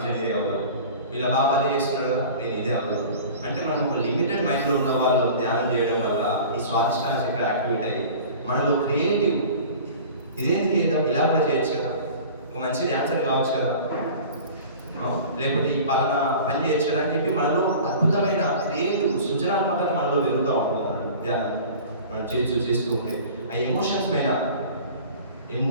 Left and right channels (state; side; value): inverted; both; correlation -0.40